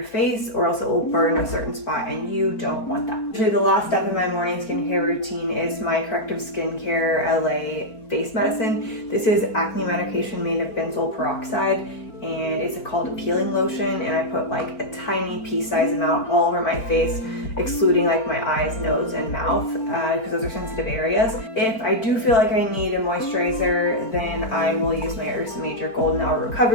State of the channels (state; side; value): late; right; 4.4 ms